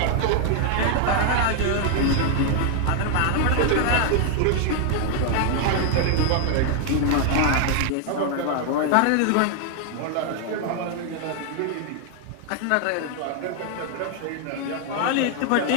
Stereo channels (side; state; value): both; different; correlation 0.00